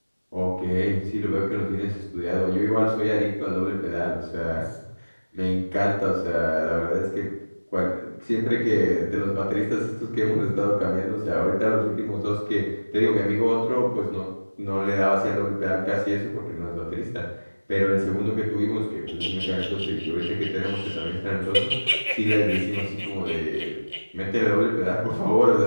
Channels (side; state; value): both; inverted; correlation -1.00